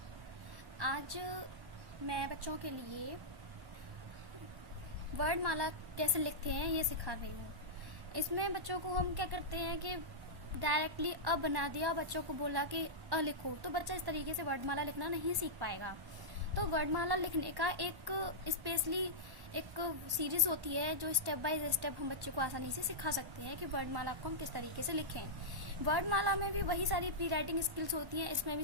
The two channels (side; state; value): left; late; 1.1 ms